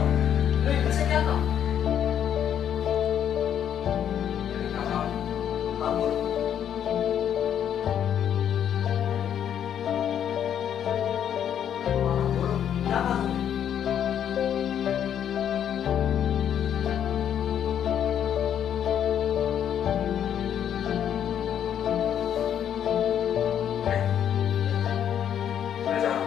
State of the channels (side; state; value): right; quieter; 9.4 dB